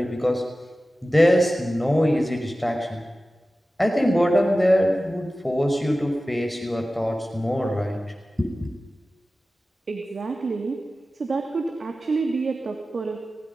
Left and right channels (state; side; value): normal; both; correlation 0.95